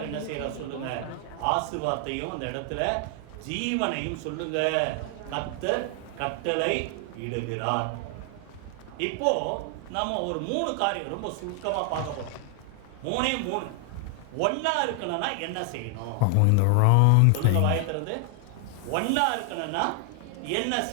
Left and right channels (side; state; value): both; different; correlation 0.00